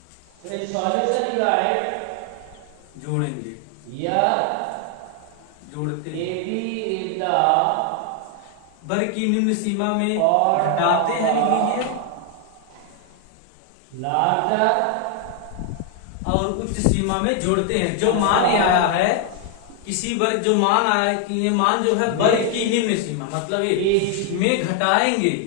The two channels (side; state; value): both; different; correlation 0.00